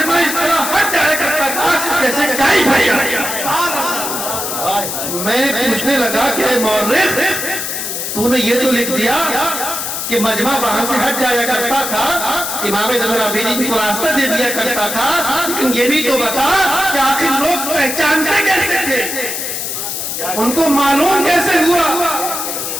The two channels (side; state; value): left; noise; hiss, 4 dB below the sound